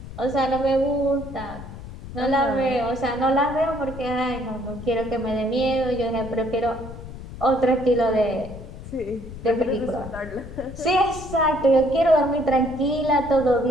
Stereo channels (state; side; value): noise; left; rumble, 13 dB below the sound